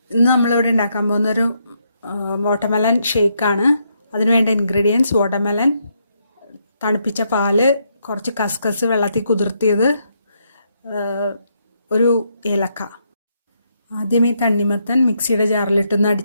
ഇന്ന് നമ്മളിവിടെ ഉണ്ടാക്കാൻ പോകുന്നൊരു വാട്ടർമെലൺ ഷേക്കാണ്. അതിനുവേണ്ട ഇൻഗ്രീഡിയൻസ് വാട്ടർമെലൺ, തണുപ്പിച്ച പാല്, കുറച്ച് കസ്കസ് വെള്ളത്തിൽ കുതിർത്തിയത്, ഒരു ഏലക്ക. ആദ്യം ഈ തണ്ണിമത്തൻ മിക്സിയുടെ ജാറിലിട്ടൊന്ന്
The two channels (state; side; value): inverted; both; correlation -0.77